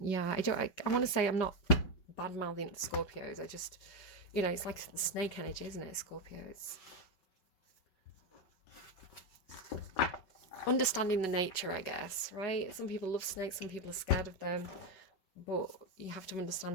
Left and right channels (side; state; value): right; late; 5.3 ms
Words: I want to say I'm not bad-mouthing the Scorpios. I just, you know, it's like snake energy, isn't it, Scorpios? Understanding the nature, I guess, right? Some people love snakes, some people are scared of them. But you have to